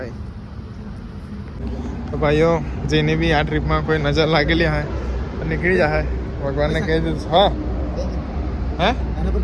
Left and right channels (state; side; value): identical; both; correlation 1.00